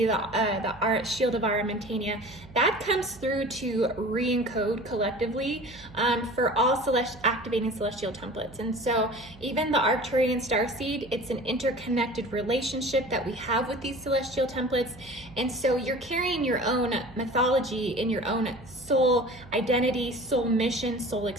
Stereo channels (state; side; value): noise; right; hum, 20 dB below the sound